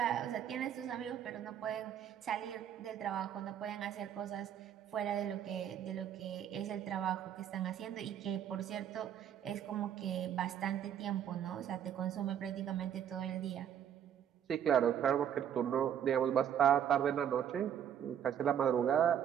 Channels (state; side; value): quieter; left; 9.4 dB